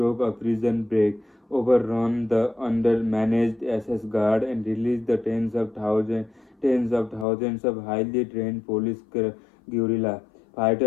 a prison break, overrun the undermanaged SS guard, and release the tens of thousands of highly trained police guerrilla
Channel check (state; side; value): drops out; right; at 7.2 s